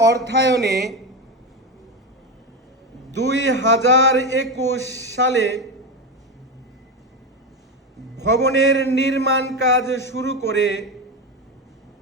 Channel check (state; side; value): normal; both; correlation 0.16